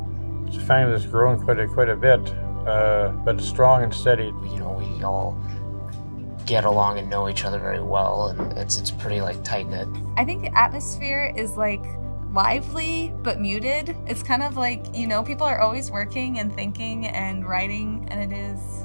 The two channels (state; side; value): inverted; both; correlation -1.00